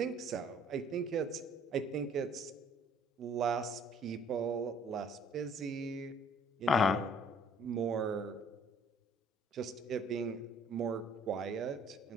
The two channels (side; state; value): both; normal; correlation 0.58